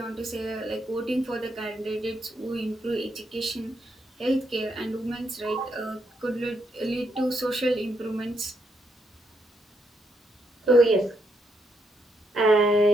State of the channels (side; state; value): both; normal; correlation 0.78